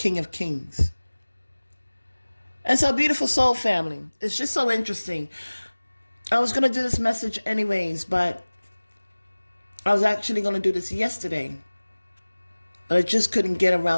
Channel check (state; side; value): inverted; both; correlation -1.00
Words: of Kings. And so, beautiful soul family, it's just so interesting. I was going to do this message anyways, but I was actually going to do this yesterday, but I just couldn't get